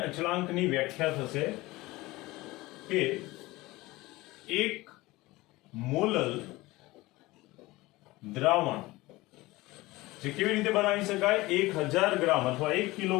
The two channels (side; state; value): right; quieter; 20.1 dB